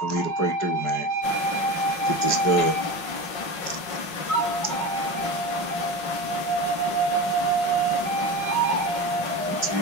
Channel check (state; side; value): late; right; 5.5 ms